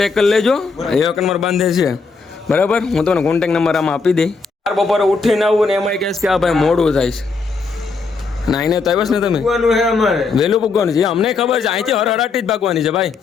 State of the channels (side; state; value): right; quieter; 4.5 dB